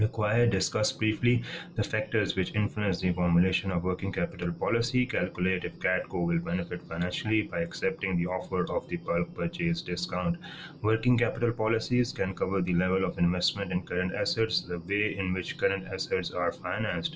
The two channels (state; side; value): identical; both; correlation 1.00